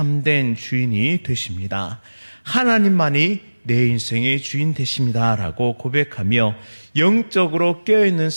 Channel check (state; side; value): inverted; both; correlation -1.00